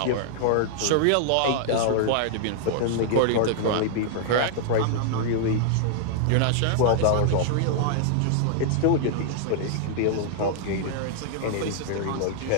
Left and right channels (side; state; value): both; different; correlation -0.01